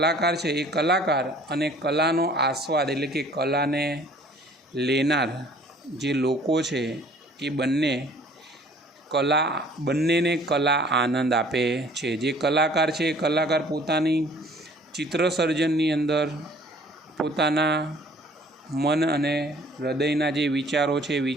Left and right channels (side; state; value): both; normal; correlation 0.54